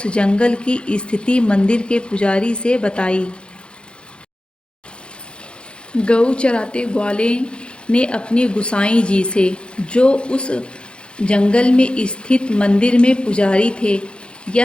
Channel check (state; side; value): late; right; 0.055 ms